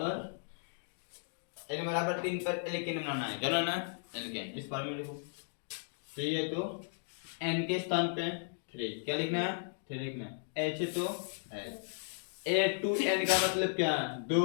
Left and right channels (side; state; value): right; silent; digital silence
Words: बराबर 3 पर एल्केन बनाना है। क्या बनाना है? एल्केन। इस बारे में देखो, सही है तो n के स्थान पे 3 क्या लिखना है? 3 लिखना है। h तो h, a to n का मतलब क्या है? 2